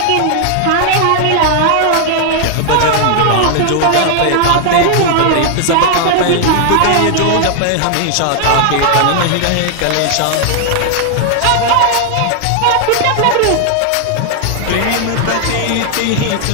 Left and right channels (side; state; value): both; different; correlation 0.00